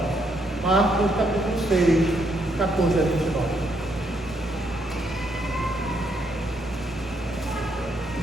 Marcos, capítulo 6, 14 a 29.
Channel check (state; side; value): normal; both; correlation 0.75